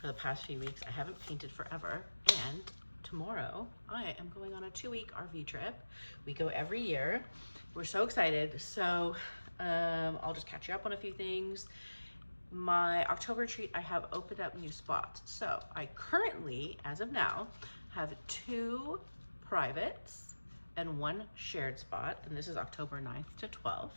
for the past few weeks. I haven't painted forever, and tomorrow I am going on a 2-week RV trip. We go every year. We're so excited. So I'll just catch you up on a few things. My October retreat, I have opened up new spots. So I currently, as of now, have 2 privates and 1 shared spot, and this is October 9th to 12th.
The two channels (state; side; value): inverted; both; correlation -1.00